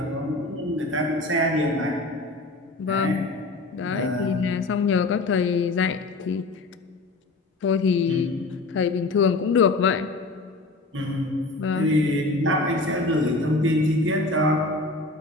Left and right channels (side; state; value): right; quieter; 3.1 dB